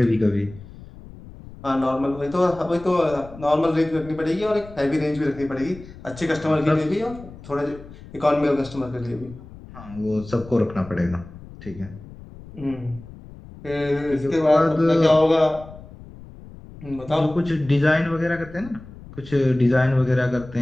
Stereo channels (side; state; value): left; noise; rumble, 17 dB below the sound